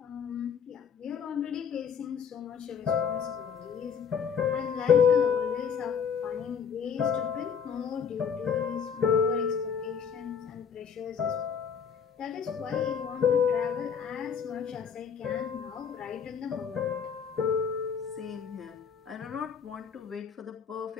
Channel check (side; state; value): right; quieter; 7.0 dB